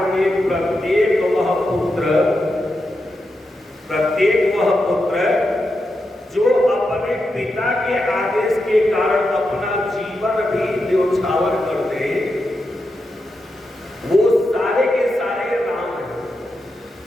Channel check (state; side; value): normal; both; correlation 0.87